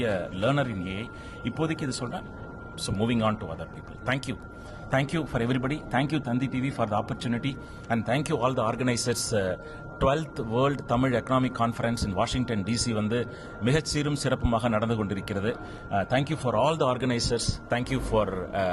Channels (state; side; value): identical; both; correlation 1.00